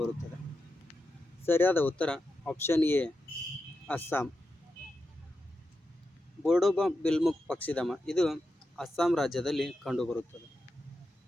ಸರಿಯಾದ ಉತ್ತರ ಆಪ್ಷನ್ ಎ, ಅಸ್ಸಾಂ. ಬೋಡೋಬಾಮ್ ಬಿಲ್ಮುಕ್ ಪಕ್ಷಿಧಾಮ ಇದು ಅಸ್ಸಾಂ ರಾಜ್ಯದಲ್ಲಿ ಕಂಡುಬರುತ್ತದೆ.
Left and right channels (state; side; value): normal; both; correlation 0.89